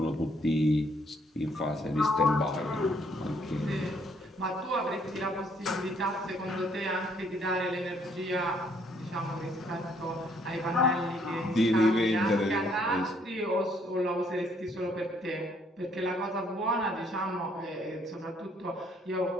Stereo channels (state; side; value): normal; both; correlation 0.66